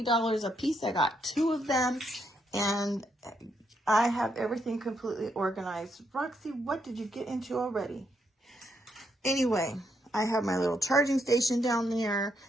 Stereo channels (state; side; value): normal; both; correlation 0.77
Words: a piece. I got 2 of them, and I have everything completely organized. Roxy, what did you get into already? Anyway, I have my little charging station down there,